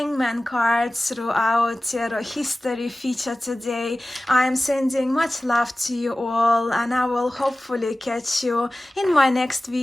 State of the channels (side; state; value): both; normal; correlation 0.96